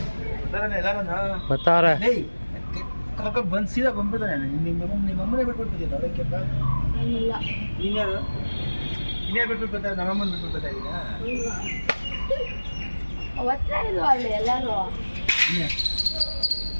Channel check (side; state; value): both; inverted; correlation -1.00